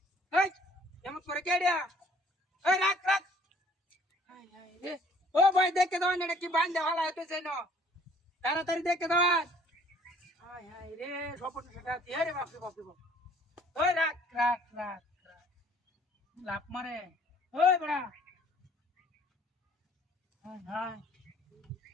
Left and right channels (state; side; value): normal; both; correlation 0.57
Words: ওই এমন করে কেডিয়া ওই রাখ রাখ হাই হাই রে ও ভাই দেখে দাও এটা কি বান্ধে হালাতে সেনো তাড়াতাড়ি দেখে দাও হাই হাই রে সপন সেটা দিয়ে রে বাপ রে বাপ রে বাপ ওই রাখ রাখ রাখ লাভ মারে ওই বড়া হাই হাই